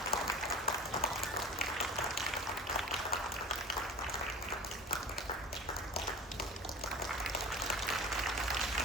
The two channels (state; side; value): normal; both; correlation 0.36